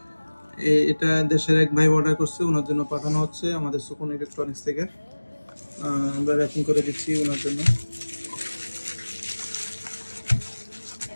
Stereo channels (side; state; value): both; inverted; correlation -1.00